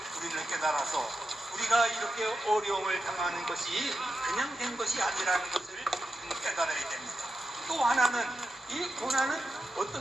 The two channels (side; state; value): both; normal; correlation 0.89